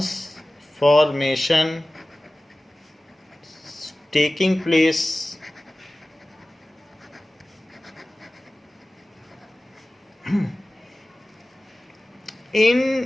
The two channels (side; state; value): both; normal; correlation 0.97